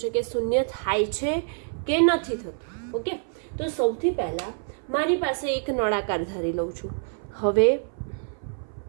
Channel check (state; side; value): silent; left; 56 dB below the other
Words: છે કે શૂન્ય થાય છે કે નથી થતું. ઓકે, તો સૌથી પહેલા મારી પાસે એક નળાકાર ધારી લઉં છું. હવે